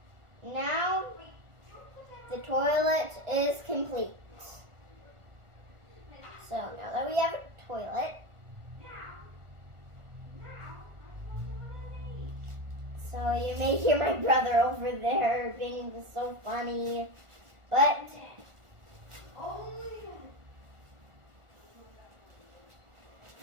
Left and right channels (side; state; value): left; late; 1.4 ms